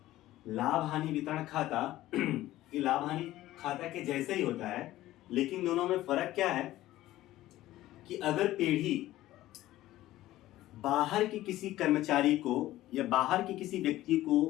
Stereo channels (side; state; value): right; quieter; 15.4 dB